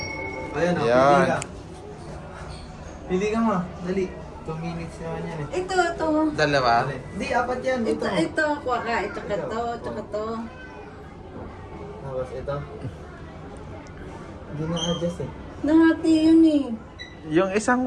Ayan o, Yan. pili ka. Pili ka mo. Dali. 2 minutes naman yan eh. Ito. Dalawa. Hindi, apat yan. Ito. Kuha ka. Tsaka to. Tapos ito. Hindi na-adjust eh. Nahati yun eh. Yung isang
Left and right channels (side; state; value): both; identical; correlation 1.00